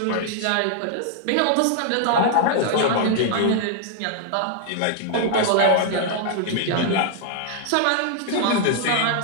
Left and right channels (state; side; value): different; both; correlation -0.01